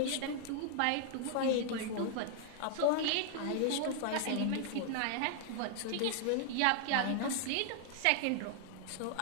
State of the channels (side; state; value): both; different; correlation 0.00